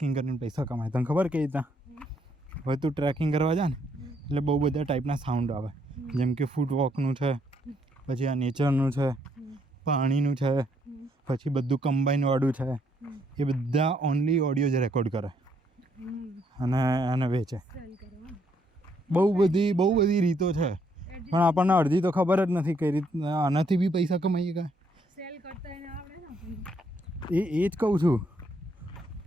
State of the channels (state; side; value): normal; both; correlation 0.71